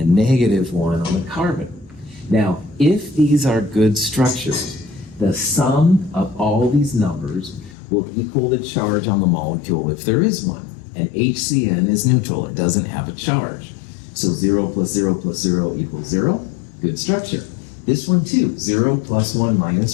-1 on the carbon. Now, if these are good structures, the sum of all these numbers will equal the charge on the molecule if there is one. And HCN is neutral, it doesn't have a charge. So 0 plus 0 plus 0 equals 0, good structure. This one too, 0 plus 1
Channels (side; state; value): right; drops out; at 7.8 s